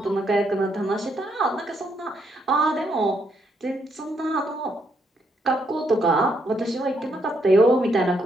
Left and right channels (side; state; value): both; normal; correlation 0.75